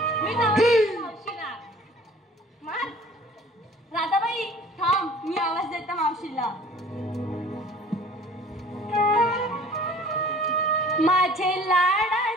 मी जाऊ मावशीला. मार. राधाबाई थांब, मी आवाज देते मावशीला. माझे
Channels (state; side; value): normal; both; correlation 0.50